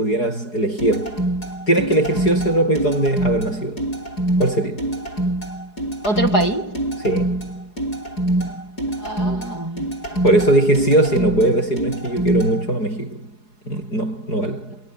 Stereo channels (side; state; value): right; late; 4.8 ms